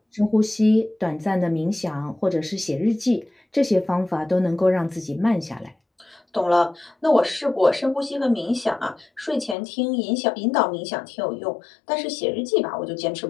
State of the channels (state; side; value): drops out; right; at 9.6 s